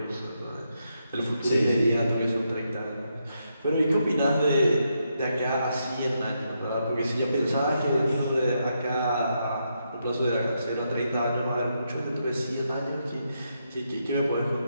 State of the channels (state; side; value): inverted; both; correlation -0.81